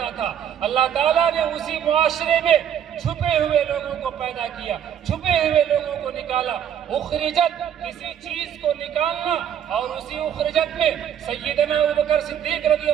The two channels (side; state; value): left; quieter; 9.4 dB